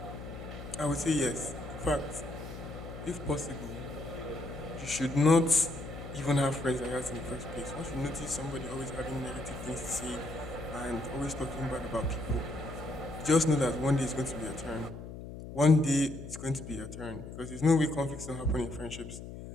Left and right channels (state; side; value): noise; left; hum, 11 dB below the sound